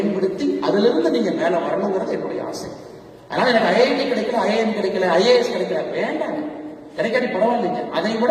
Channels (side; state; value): both; identical; correlation 1.00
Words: அதிலிருந்து நீங்க மேல வரணுங்கிறது என்னுடைய ஆசை. அதனால எனக்கு IIT கிடைக்கல, IIM கிடைக்கல, IAS கிடைக்கல, வேண்டாம், கிடைக்காட்டி பரவாயில்லைங்க. அதை விட